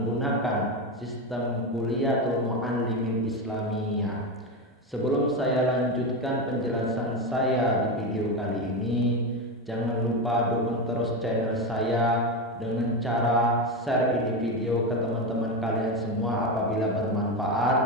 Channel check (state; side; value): normal; both; correlation 0.15